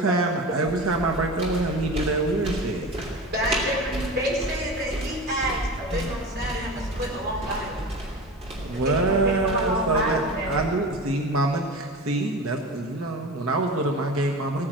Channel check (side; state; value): both; normal; correlation 0.31